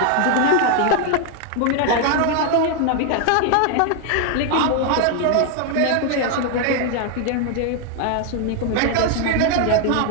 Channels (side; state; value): both; different; correlation 0.00